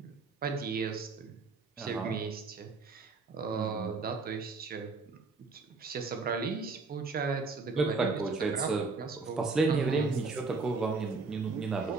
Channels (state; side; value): quieter; left; 4.1 dB